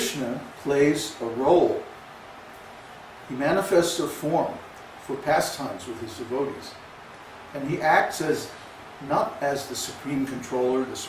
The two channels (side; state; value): both; identical; correlation 1.00